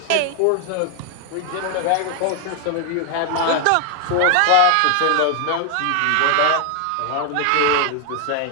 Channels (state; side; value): different; both; correlation 0.00